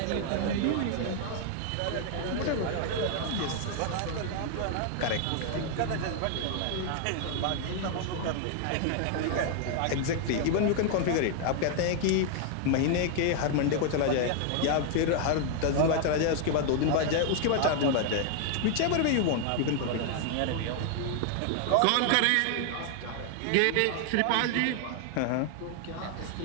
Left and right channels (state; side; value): different; both; correlation 0.00